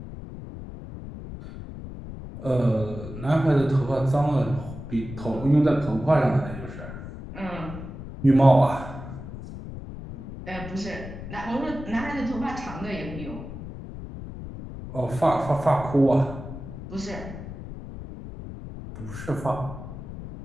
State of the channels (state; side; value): noise; left; rumble, 11 dB below the sound